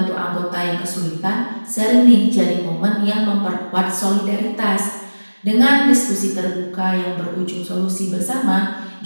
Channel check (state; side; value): inverted; both; correlation -1.00